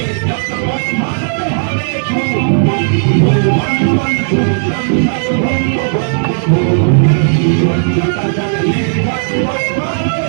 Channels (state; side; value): silent; left; digital silence